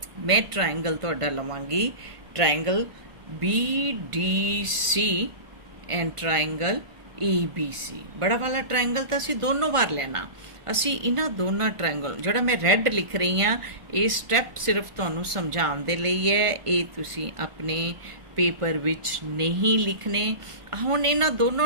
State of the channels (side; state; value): left; late; 1.5 ms